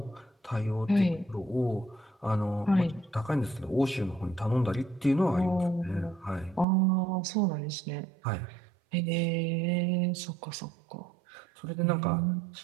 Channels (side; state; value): left; drops out; at 6.7 s